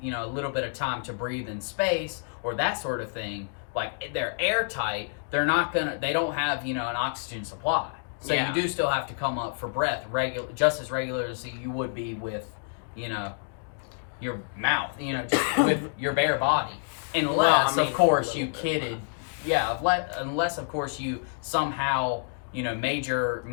you know, a little bit of time to breathe in space, or that sort of thing, like, they're airtight, they don't have, you know, an oxygen supply. So you do still have to come up for breath just as regular as you would be with, you know, your mouth, you know, just with your bare body. Unless, of course, you kidded. Yeah, unless, of course, you somehow, you know, major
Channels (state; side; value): silent; right; digital silence